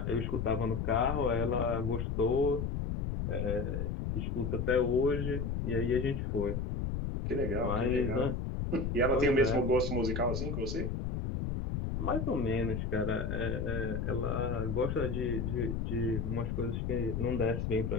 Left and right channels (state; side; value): noise; left; rumble, 1 dB below the sound